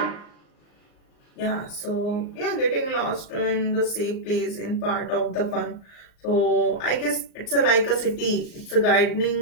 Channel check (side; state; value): right; late; 38 ms